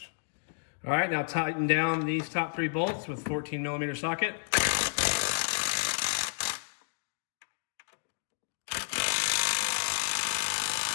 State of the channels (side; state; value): right; silent; digital silence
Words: All right, now tighten down these top 3 bolts with 14 millimeter socket.